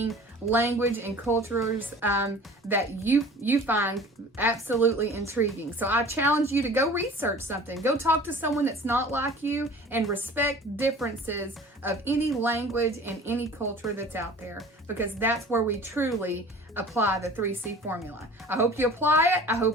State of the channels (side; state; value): both; normal; correlation 0.44